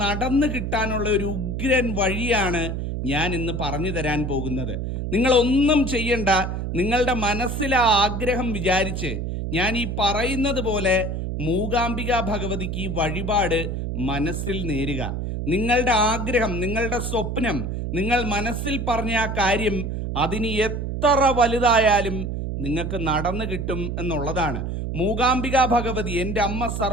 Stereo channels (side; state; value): right; noise; hum, 3 dB below the sound